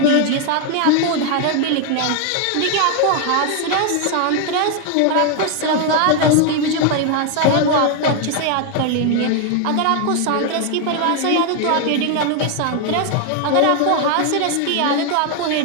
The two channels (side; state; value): both; different; correlation 0.01